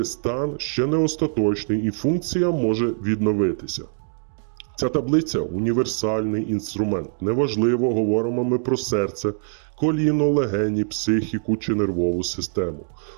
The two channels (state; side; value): silent; left; 63 dB below the other